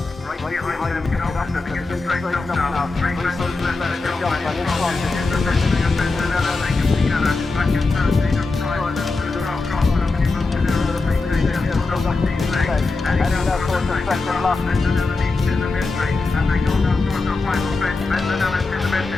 Right behind them, after they get straight up now. Three close to the left, they jump and in front. The mystery of Bendanella, they come together. Back in third, they just try to cross them, and he moves to their other feet. They just pull up these legs. And he goes down towards the second lap. Bendanella leads to the mystery, and they go down towards the final stretch. Bendanella to the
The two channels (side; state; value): right; quieter; 3.7 dB